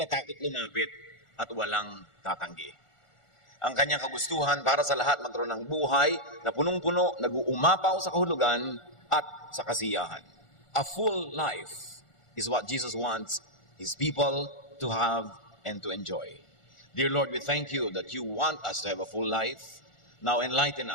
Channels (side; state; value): right; late; 1.4 ms